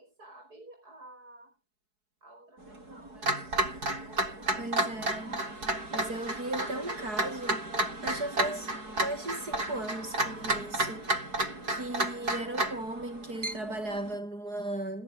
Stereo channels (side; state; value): left; late; 4.7 ms